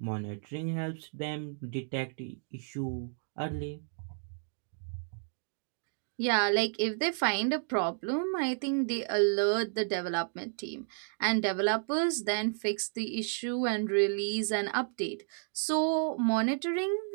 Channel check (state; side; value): silent; left; digital silence